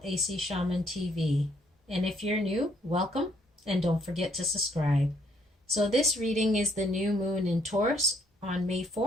AC Shaman TV. And if you're new, welcome and don't forget to subscribe. So this reading is the new moon in Taurus on May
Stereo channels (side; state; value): both; normal; correlation 0.68